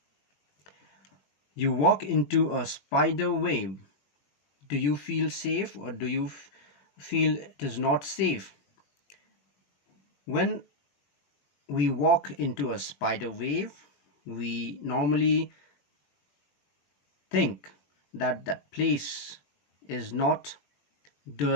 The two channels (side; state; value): right; late; 21 ms